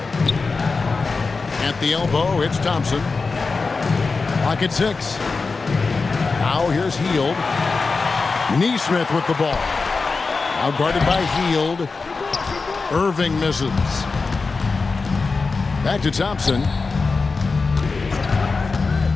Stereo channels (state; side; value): quieter; right; 4.3 dB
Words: At the elbow, it's Thompson. Clock at 6. Now here's Hield. Neesmith with the ball. Now guarded by Hield. Irving misses. Back to Thompson.